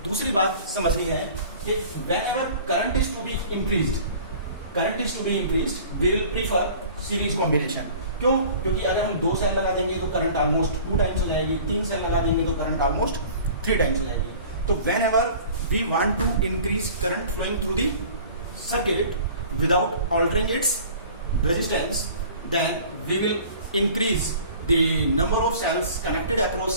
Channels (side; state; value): both; inverted; correlation -0.45